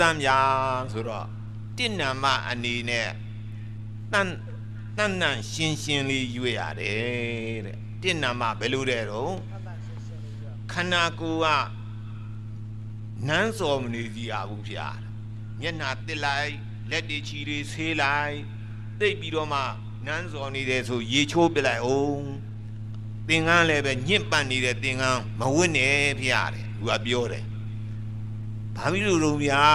မ်းများဆိုတော့တဏ္ဏမအနေနဲ့တန်တန်ရှင်းရှင်းလေးရွတ်ရတယ်တဲ့တဏ္ဏမဘယ်လိုတဲ့တော့ခန္ဓာကိုယ်ကနန်းစော်မနေစီရဘူးဗျာမျက်နှာတစ်လိုက်လက်တွေချီတွေဆေးလိုက်သိပ်ပြီးတော့မှနန်းစော်နေတယ်ဆိုရေချိုးပလိုက်အောင်သင်္ကန်းလည်းပဲညင့်ပတ်နေတဲ့သင်္ကန်းမဝတ်နဲ့ဖျားတယ်သူကပြောတယ်ဘာဖြစ်လို့တော့ဗျာ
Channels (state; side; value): identical; both; correlation 1.00